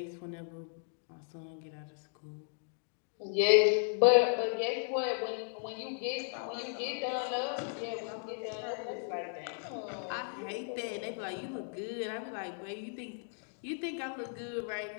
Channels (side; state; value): right; silent; 54 dB below the other